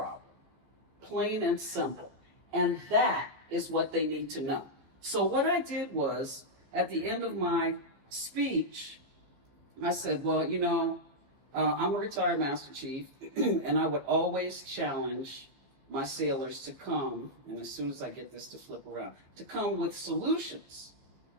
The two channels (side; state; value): left; late; 14 ms